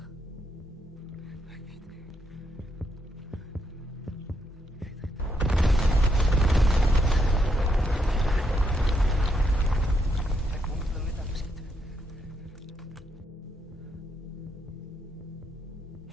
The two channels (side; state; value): both; normal; correlation 0.78